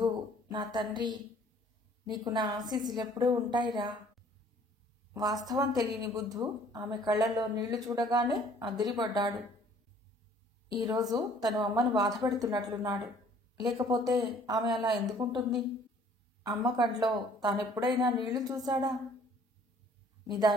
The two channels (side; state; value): both; normal; correlation 0.56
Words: నా తండ్రి, నీకు నా ఆశీస్సులెప్పుడూ ఉంటాయిరా. వాస్తవం తెలియని బుద్ధు ఆమె కళ్లలో నీళ్లు చూడగానే అదిరిపడ్డాడు. ఈరోజు తను అమ్మను బాధపెడుతున్నట్లున్నాడు. లేకపోతే ఆమె అలా ఎందుకుంటుంది? అమ్మ కంట్లో తానెప్పుడైనా నీళ్లు చూశాడా?